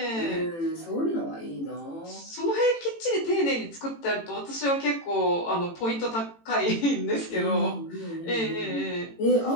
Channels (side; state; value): right; late; 18 ms